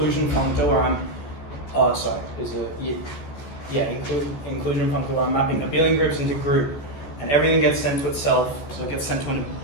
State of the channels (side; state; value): right; late; 14 ms